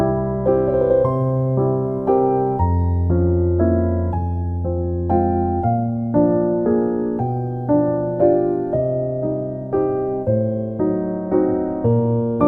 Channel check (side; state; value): both; identical; correlation 1.00